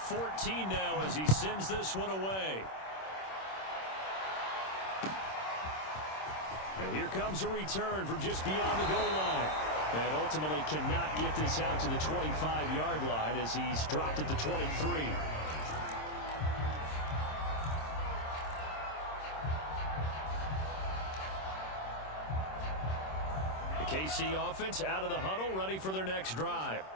now as he sends this one away. And here comes a return from just beyond the goal line. And ultimately cannot get this out to the 25-yard line as he's dropped at the 23. The KC offense out of the huddle, ready for their next drive.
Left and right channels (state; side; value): late; right; 26 ms